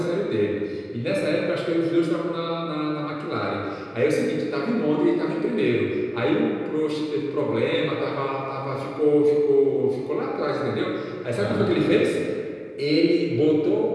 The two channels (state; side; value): identical; both; correlation 1.00